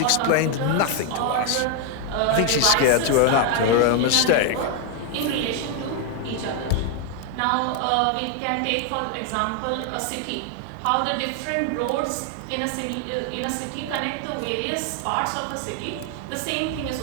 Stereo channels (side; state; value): both; different; correlation 0.01